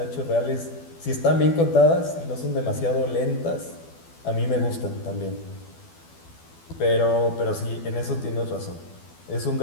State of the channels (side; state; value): right; late; 12 ms